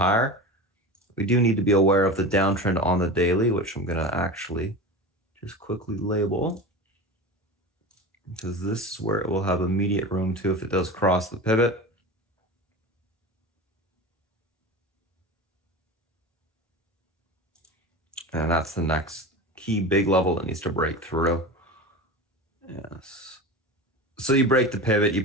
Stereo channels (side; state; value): both; normal; correlation 0.29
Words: We do need to be aware of the downtrend on the daily, which I'm going to actually just quickly label, because this is where it will have immediate room to if it does cross the pivot. And that's the next key big level that needs to break through. Yes. So you break the pivot, you